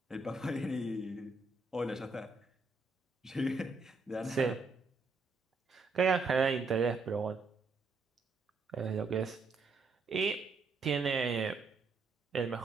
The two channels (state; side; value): quieter; left; 3.8 dB